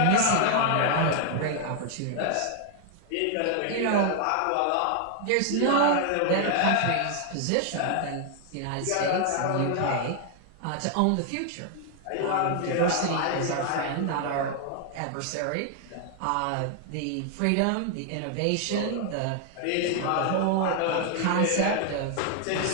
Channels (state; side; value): different; both; correlation 0.00